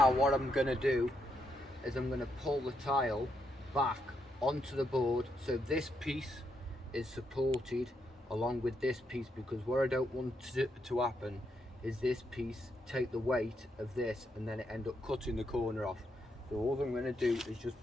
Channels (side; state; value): both; normal; correlation 0.79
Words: what I'm going to do is I'm going to pull the tile back onto the board so this piece is supported along with this piece, because what I don't want to happen is this piece take the weight of this and then it end up cutting the corner off. So all I'm going to do is just